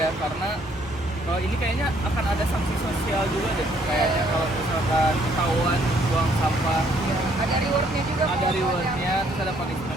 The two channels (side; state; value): both; normal; correlation 0.66